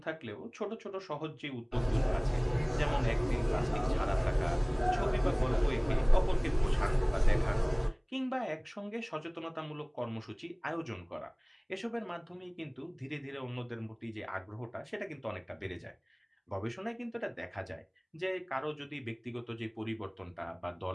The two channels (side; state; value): both; identical; correlation 1.00